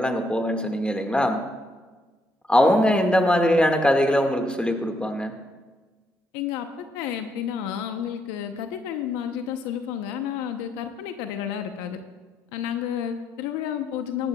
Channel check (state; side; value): normal; both; correlation 0.75